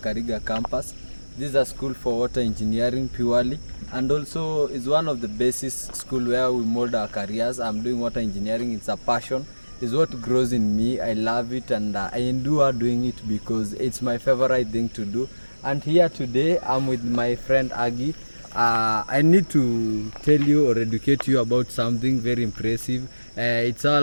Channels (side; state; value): both; inverted; correlation -1.00